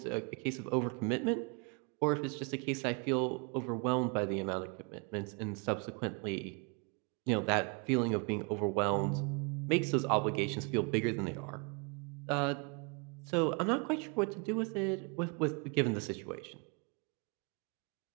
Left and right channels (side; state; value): left; quieter; 33.7 dB